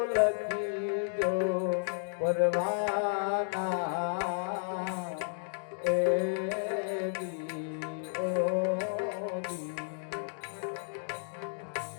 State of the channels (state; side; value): silent; right; digital silence